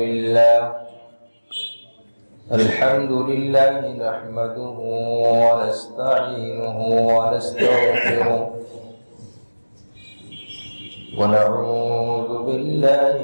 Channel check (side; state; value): both; inverted; correlation -1.00